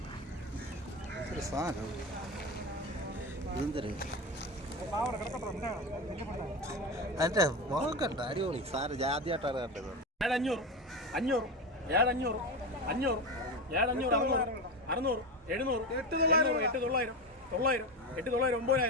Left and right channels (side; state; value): both; normal; correlation 0.20